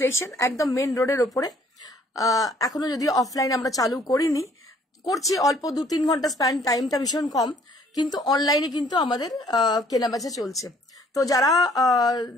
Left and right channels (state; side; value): normal; both; correlation 0.61